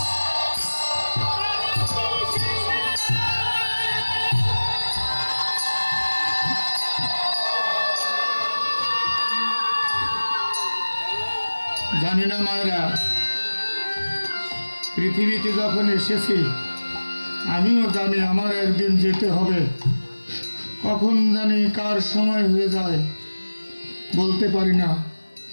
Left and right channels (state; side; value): inverted; both; correlation -1.00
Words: জানি না মায়েরা, পৃথিবীতে যখন এসেছি আমিও জানি আমার একদিন যেতে হবে। কখন জানি কার সময় হয়ে যায় বলতে পারি না,